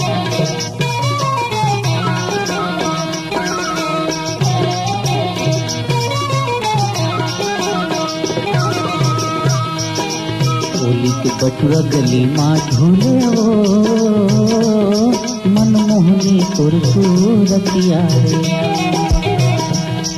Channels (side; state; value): both; identical; correlation 1.00